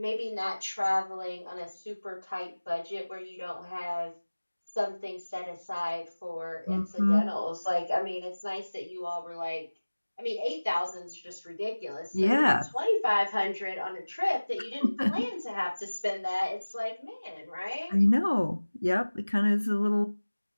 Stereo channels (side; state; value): both; inverted; correlation -1.00